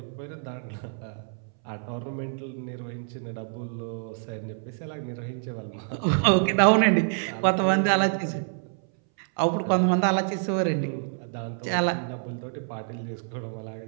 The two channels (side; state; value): left; silent; 60 dB below the other